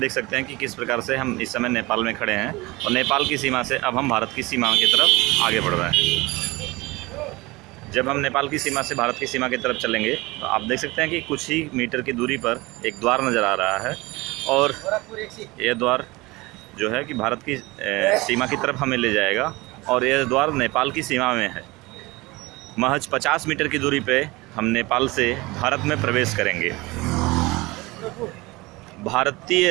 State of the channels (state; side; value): quieter; left; 22.3 dB